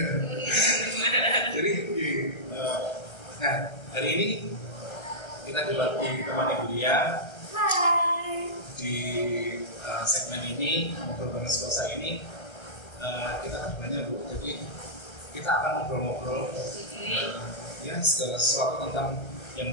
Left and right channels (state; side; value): late; right; 1.3 ms